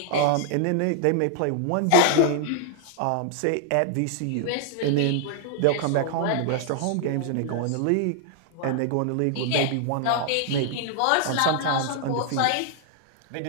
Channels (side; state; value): both; different; correlation 0.00